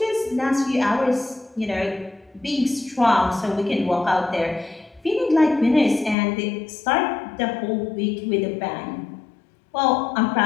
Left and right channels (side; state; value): right; drops out; at 6.2 s